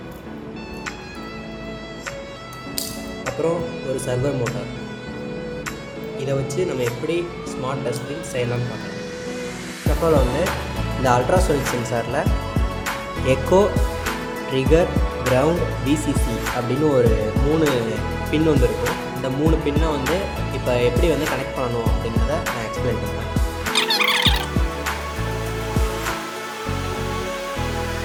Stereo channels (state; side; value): identical; both; correlation 1.00